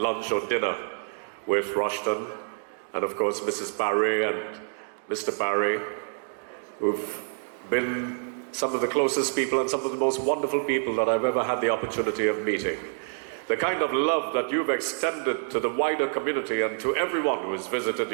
or dinner with Rushton, and of course Mrs. Paré and Mr. Paré, who've been some of the closest people and some of the most wonderful people that I've ever had the opportunity of meeting. The kind of love that you've extended to the wider community and to everyone who has visited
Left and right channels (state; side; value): silent; left; digital silence